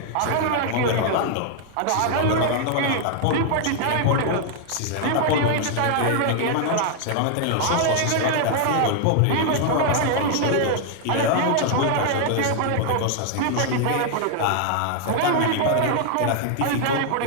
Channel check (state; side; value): different; both; correlation 0.00